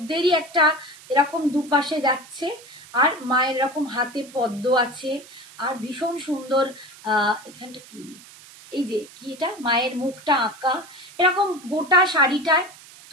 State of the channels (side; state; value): right; noise; hiss, 20 dB below the sound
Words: একটা এরকম দুপাশে যাচ্ছে, আর মায়ের এরকম হাতে পদ্ম আছে, আর ভীষণ সুন্দর এখানটা কি, এই যে কি এটা, মায়ের মুখটা আঁকা, এরকম গোটা শাড়িটায়